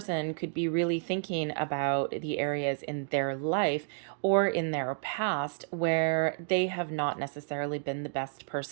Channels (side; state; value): left; silent; digital silence